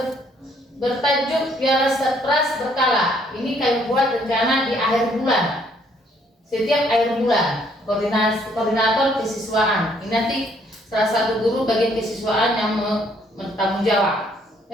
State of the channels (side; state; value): both; normal; correlation 0.66